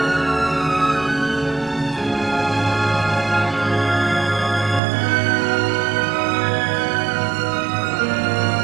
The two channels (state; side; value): drops out; left; at 4.8 s